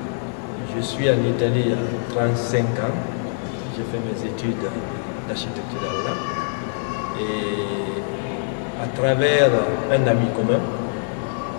Je suis en Italie il y a 35 ans. J'ai fait mes études d'architecture là. Et à travers un ami commun,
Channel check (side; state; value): right; silent; digital silence